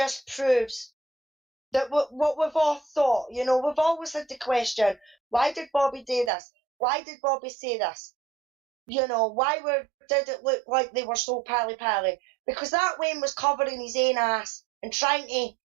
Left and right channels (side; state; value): left; drops out; at 6.3 s